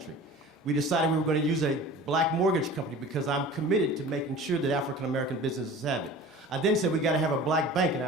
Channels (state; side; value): normal; both; correlation 0.40